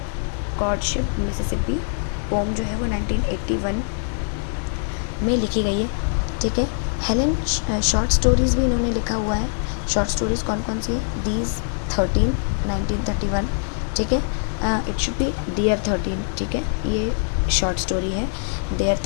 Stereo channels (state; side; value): silent; right; digital silence